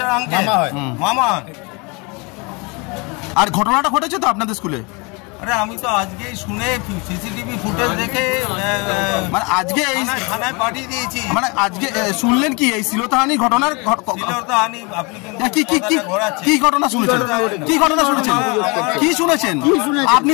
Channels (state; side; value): quieter; right; 29.3 dB